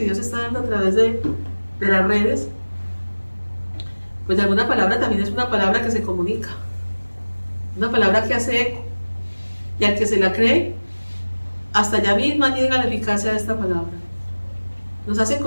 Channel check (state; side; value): inverted; both; correlation -1.00